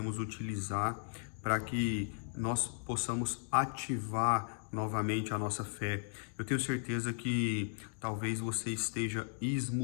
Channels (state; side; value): silent; right; 54 dB below the other